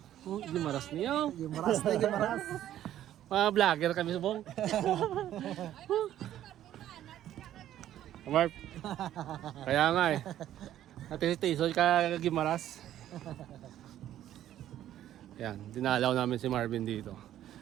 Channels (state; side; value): quieter; left; 12.1 dB